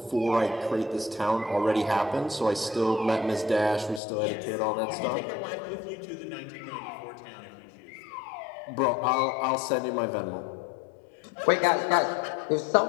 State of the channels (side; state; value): right; drops out; at 4.0 s